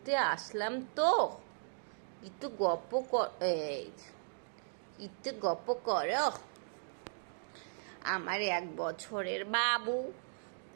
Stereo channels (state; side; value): silent; left; digital silence